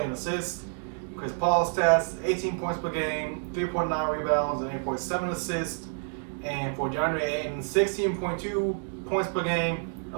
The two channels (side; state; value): left; silent; 59 dB below the other